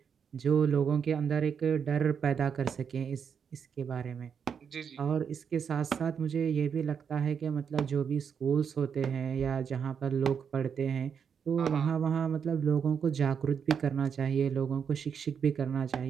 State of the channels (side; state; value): left; quieter; 7.0 dB